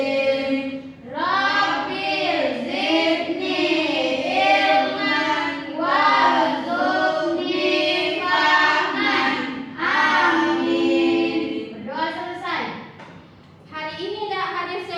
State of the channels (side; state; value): both; identical; correlation 1.00